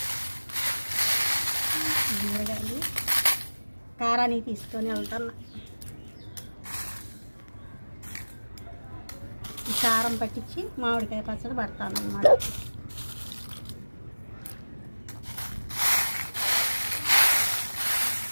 మిరగాయలు కారాన్ని తీసుకొని వెళ్తాను. ఈ కారం పట్టించి మామిడికాయ పచ్చడి పడతాను అన్నమాట.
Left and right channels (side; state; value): both; inverted; correlation -1.00